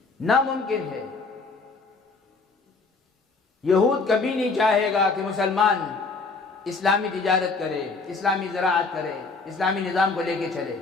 ناممکن ہے۔ یہود کبھی نہیں چاہے گا کہ مسلمان اسلامی تجارت کرے، اسلامی زراعت کرے، اسلامی نظام کو لے کے چلے،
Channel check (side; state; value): right; quieter; 4.1 dB